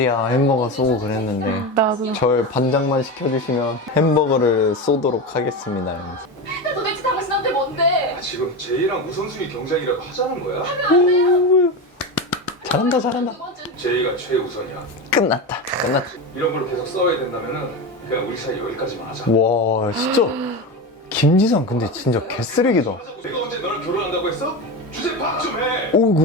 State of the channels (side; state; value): both; normal; correlation 0.20